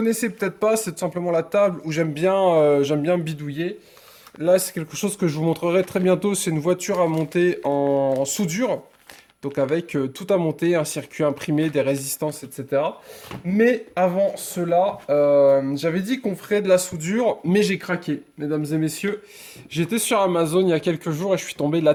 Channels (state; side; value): identical; both; correlation 1.00